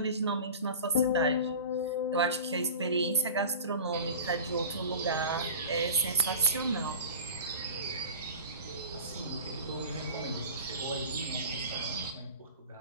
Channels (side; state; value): both; inverted; correlation -0.34